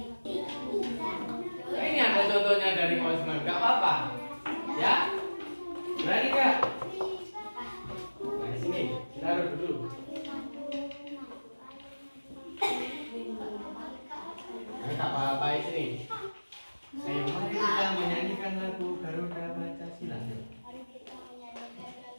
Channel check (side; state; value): both; inverted; correlation -1.00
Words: Nah, ini ada contohnya dari Pak Usman. Gak apa-apa. Ya. Berani gak? Nah, di sini. Taruh dulu. Nah, gak apa-apa di sini. Ayo, mari kita menyanyikan lagu Garuda Pancasila.